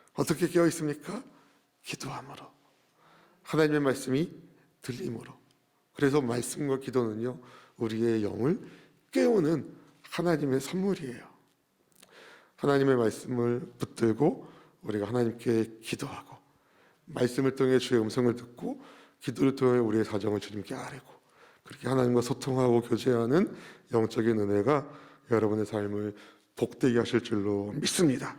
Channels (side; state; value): both; identical; correlation 1.00